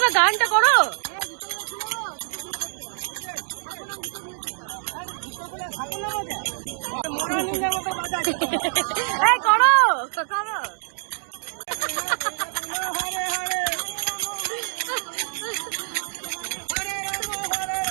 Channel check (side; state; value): left; silent; digital silence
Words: গানটা করো। এই করো করো।